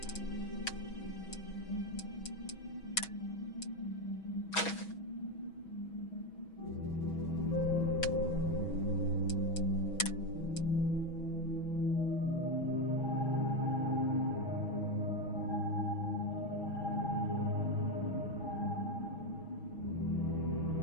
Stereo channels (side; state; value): right; late; 6.2 ms